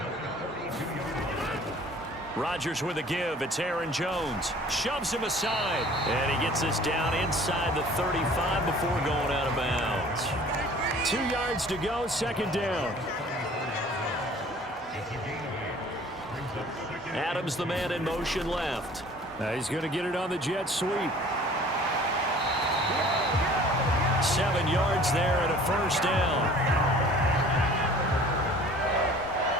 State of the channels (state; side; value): normal; both; correlation 0.49